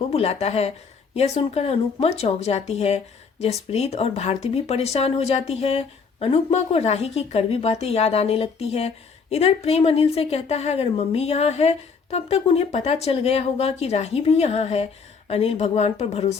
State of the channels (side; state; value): right; quieter; 5.4 dB